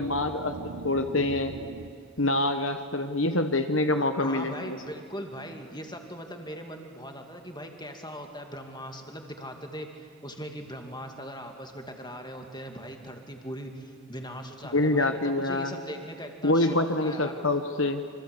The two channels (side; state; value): both; normal; correlation 0.04